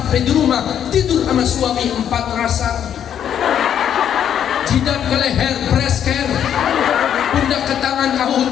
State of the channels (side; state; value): right; quieter; 9.4 dB